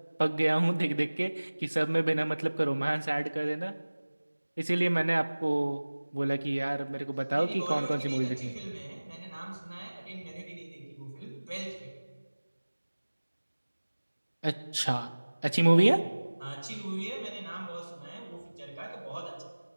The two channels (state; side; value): inverted; both; correlation -1.00